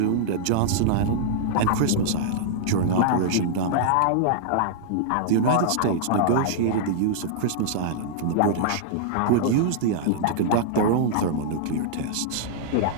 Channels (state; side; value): different; both; correlation -0.01